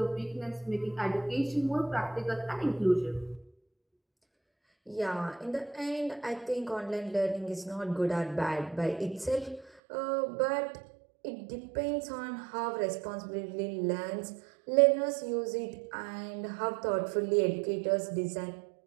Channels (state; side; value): drops out; left; at 9.7 s